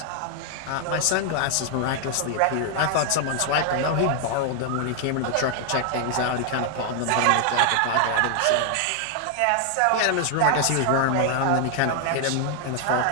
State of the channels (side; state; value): both; different; correlation 0.00